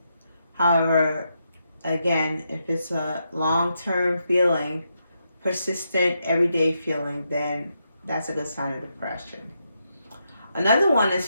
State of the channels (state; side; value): inverted; both; correlation -0.82